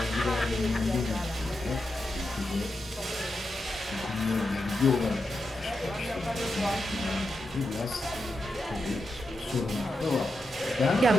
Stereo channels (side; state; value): both; normal; correlation 0.87